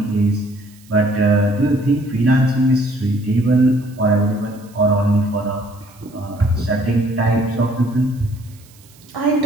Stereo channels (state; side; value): noise; right; hiss, 27 dB below the sound